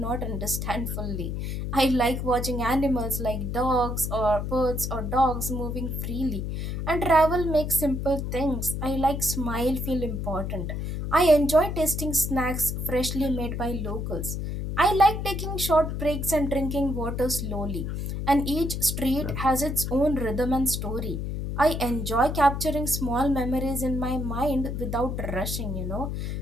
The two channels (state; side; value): noise; left; hum, 3 dB below the sound